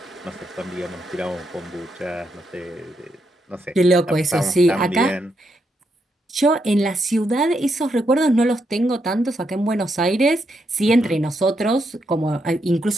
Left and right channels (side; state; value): both; normal; correlation 0.80